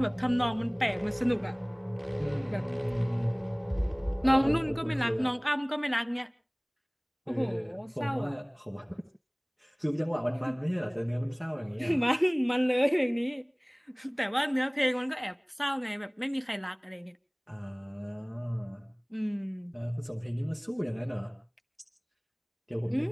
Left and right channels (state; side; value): identical; both; correlation 1.00